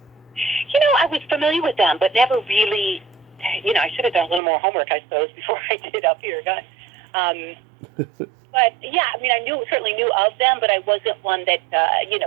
I was familiar with them, but never really. I should have done a little more homework, I suppose, before I did up here. But yeah, I mean, I certainly knew of them, but I wasn't one that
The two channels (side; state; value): left; drops out; at 4.4 s